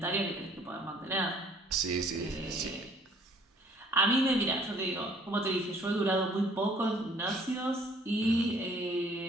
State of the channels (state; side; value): normal; both; correlation 0.58